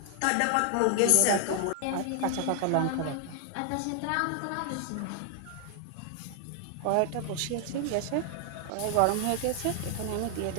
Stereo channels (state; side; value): different; both; correlation 0.00